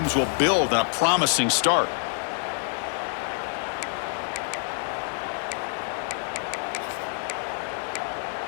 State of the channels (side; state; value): right; silent; 60 dB below the other